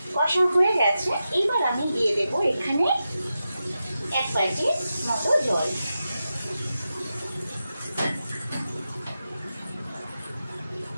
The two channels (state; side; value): inverted; both; correlation -0.90